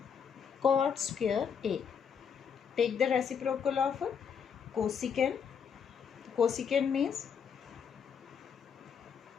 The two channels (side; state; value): right; quieter; 7.1 dB